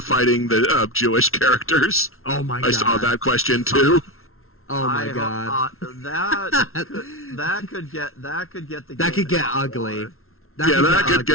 fighting the Jewish characters? Oh my god. I saw that question, too. Oh my god. That could get the That game could get in hot ugly. water. That could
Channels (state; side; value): late; right; 0.62 ms